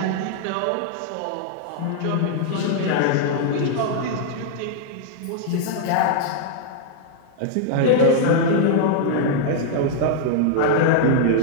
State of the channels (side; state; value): both; different; correlation -0.01